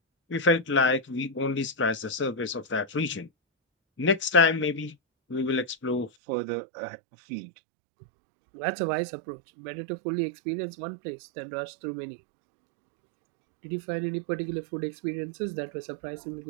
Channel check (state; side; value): drops out; left; at 6.1 s